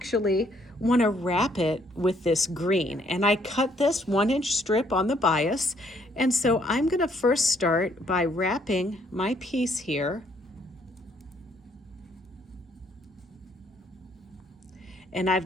want to wrap it with this green, and I cut this 1-inch strip on the bias, and so I'm going to first start by wrapping my piece here, and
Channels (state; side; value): normal; both; correlation 0.67